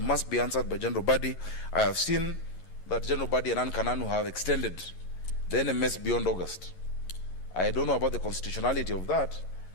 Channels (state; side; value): late; right; 11 ms